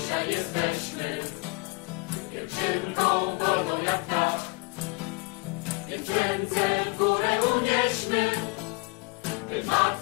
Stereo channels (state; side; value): quieter; right; 28.1 dB